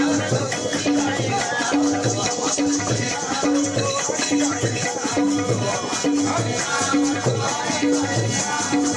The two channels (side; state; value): both; identical; correlation 1.00